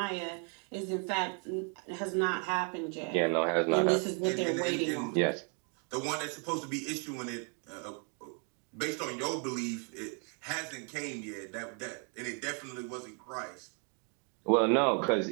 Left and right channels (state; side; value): quieter; left; 39.1 dB